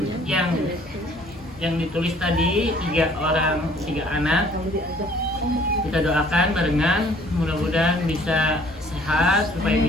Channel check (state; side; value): normal; both; correlation 0.57